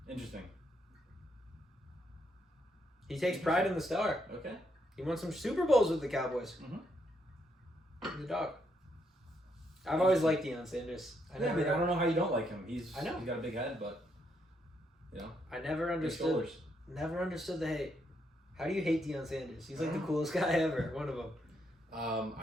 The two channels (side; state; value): both; normal; correlation 0.76